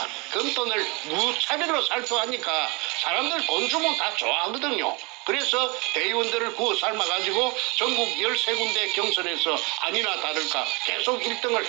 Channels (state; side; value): quieter; left; 28.1 dB